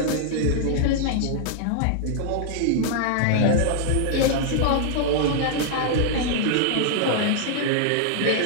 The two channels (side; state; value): both; different; correlation -0.01